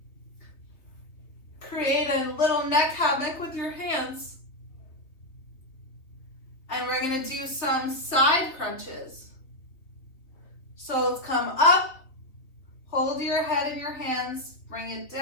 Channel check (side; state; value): right; late; 3.4 ms